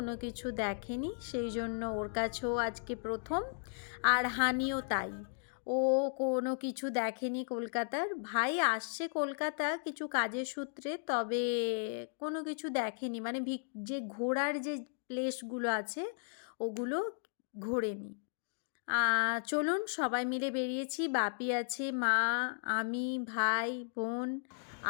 কিছু দেখেনি, সেই জন্য ওর কাছেও আজকে প্রথম। আর হানিও তাই, ও কোনো কিছু দেখেনি কলকাতার। ভাই আসছে কলকাতা কিছু কাজের সূত্রে, তবে কোনো কিছু দেখেনি, মানে যে ঘোরার যে প্লেসগুলো আছে ওগুলো ঘোরেনি। চলুন সবাই মিলে বেরিয়েছি, বাপি আছে, মা, আমি, ভাই, বোন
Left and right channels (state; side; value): silent; right; digital silence